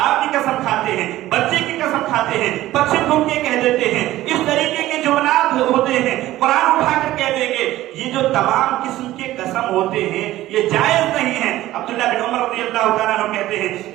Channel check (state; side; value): quieter; left; 15.4 dB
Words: کی قسم کھاتے ہیں, بچے کی قسم کھاتے ہیں, بچے کو کہہ دیتے ہیں. اس طریقے کے جملات ہوتے ہیں, قرآن اٹھا کر کہہ دیں گے. یہ جو تمام قسم کے قسم ہوتے ہیں یہ جائز نہیں ہے. عبداللہ بن عمر رضی اللہ تعالیٰ عنہ کہتے ہیں